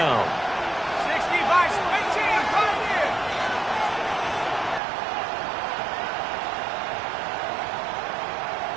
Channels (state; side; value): drops out; left; at 4.8 s